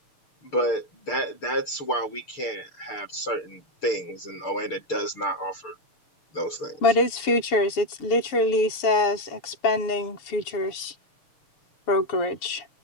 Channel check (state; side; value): late; right; 7.1 ms